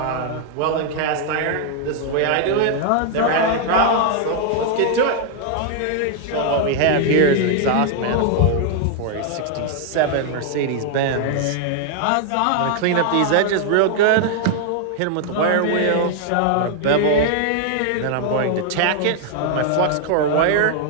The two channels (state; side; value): different; both; correlation 0.00